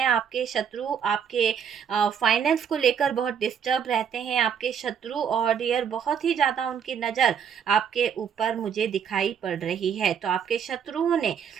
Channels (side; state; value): left; quieter; 7.7 dB